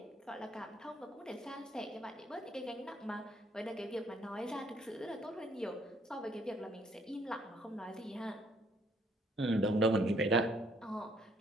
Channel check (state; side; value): normal; both; correlation 0.66